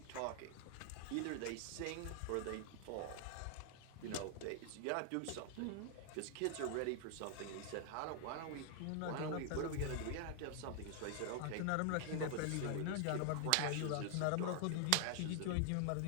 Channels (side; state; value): both; different; correlation 0.00